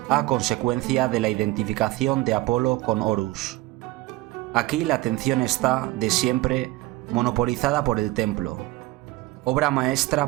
a consecuencia de la identificación de Apolo con Horus. Aquí la atención está, de siempre, monopolizada por el templo, obra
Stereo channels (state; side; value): quieter; left; 18.9 dB